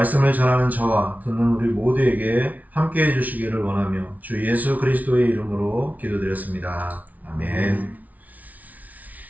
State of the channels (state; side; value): late; left; 0.074 ms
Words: 전하는 저와 듣는 우리 모두에게 함께 해주시기를 원하며 주 예수 그리스도의 이름으로 기도드렸습니다. 아멘.